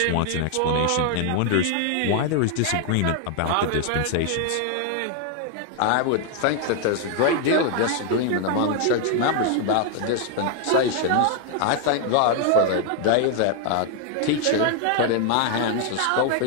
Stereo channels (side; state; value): both; different; correlation 0.00